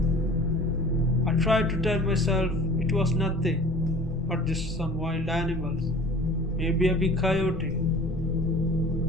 I tried to tell myself it was nothing but just some wild animals, maybe a big coyote.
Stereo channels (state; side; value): normal; both; correlation 0.45